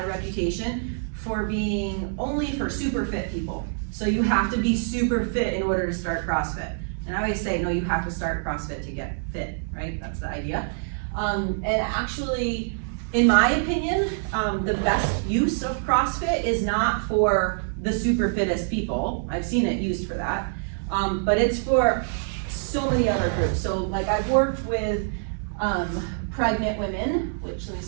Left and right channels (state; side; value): silent; left; digital silence